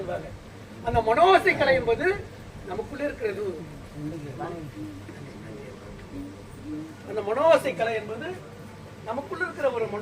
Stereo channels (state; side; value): identical; both; correlation 1.00